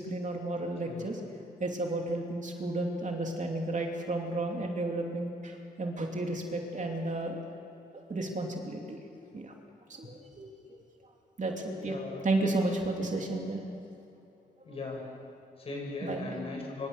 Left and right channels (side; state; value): both; normal; correlation 0.67